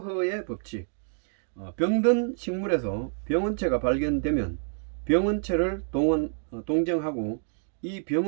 법칙. 병든 식물에서 병원체가 발견되면 병원체를 동정하고 이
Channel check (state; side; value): silent; left; digital silence